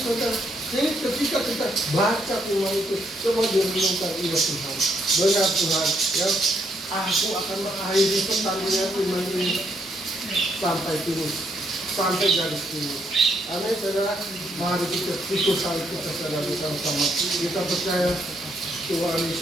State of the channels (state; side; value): normal; both; correlation 0.74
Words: saudara. Jadi ketika kita baca firman itu, coba direnungkan, iya Tuhan, benar Tuhan, ya. Aku akan mengakhiri pertandingan iman ini sampai finish, sampai garis finish. Amin, saudara. Mari kita ikut salib kita saudara bersama-sama. Kita percaya Tuhan